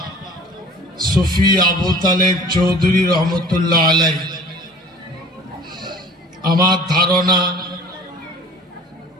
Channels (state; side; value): normal; both; correlation 0.46